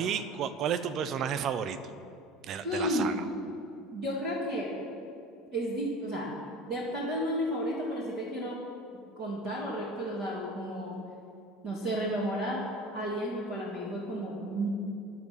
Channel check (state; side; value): normal; both; correlation 0.39